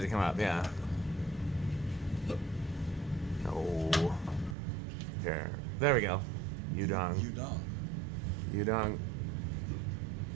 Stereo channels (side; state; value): left; drops out; at 4.5 s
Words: to come up, yeah. Oh. Here. There we go. Yudong. Udong. Yudong.